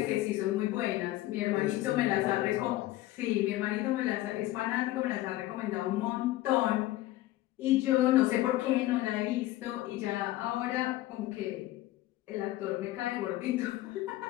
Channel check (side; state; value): right; quieter; 16.3 dB